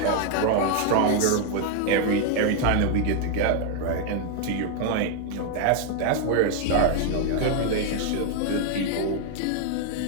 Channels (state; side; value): different; both; correlation 0.00